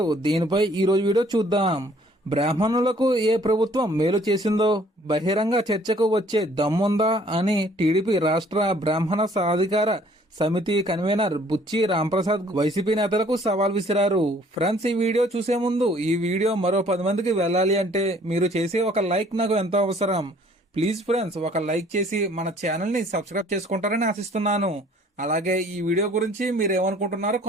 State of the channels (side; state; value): both; normal; correlation 0.58